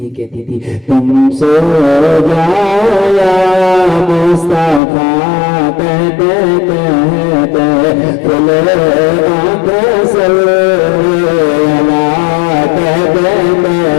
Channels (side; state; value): right; drops out; at 4.8 s